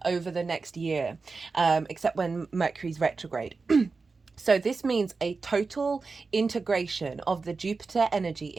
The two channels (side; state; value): left; quieter; 4.3 dB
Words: over the next year, except when Mercury's retrograde. So this means a total integration of the Jupiter energy